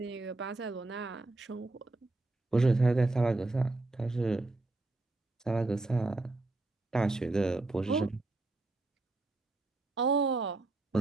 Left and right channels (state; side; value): quieter; left; 3.0 dB